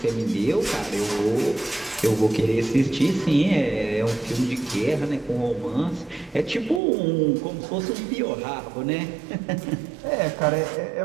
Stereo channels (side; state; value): left; drops out; at 6.8 s